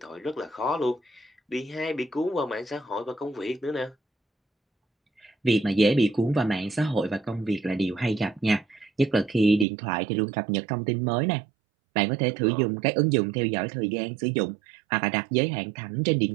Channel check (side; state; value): left; drops out; at 9.7 s